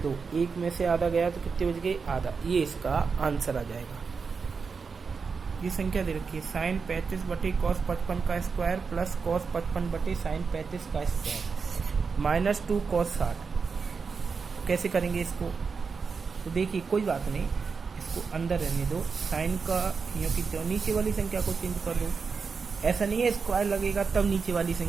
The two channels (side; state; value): left; quieter; 5.2 dB